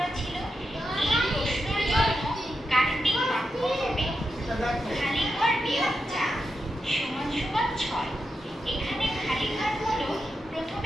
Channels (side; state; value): both; normal; correlation 0.87